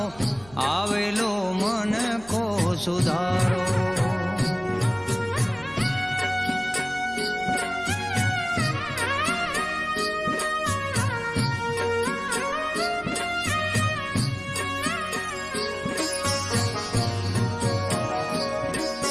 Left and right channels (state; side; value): noise; right; hum, 22 dB below the sound